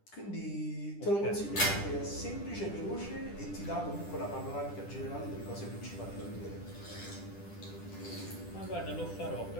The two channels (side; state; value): right; late; 10 ms